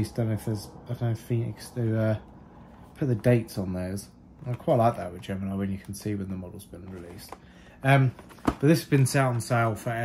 I don't know if Phoenix do put the dates on theirs. I quite like that with Gemini, when you can see when the model's been released. But this has been set on sale for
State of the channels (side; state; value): both; identical; correlation 1.00